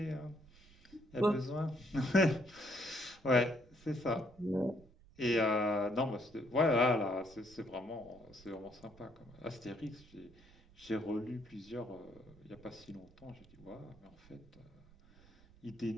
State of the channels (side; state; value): right; noise; rumble, 24 dB below the sound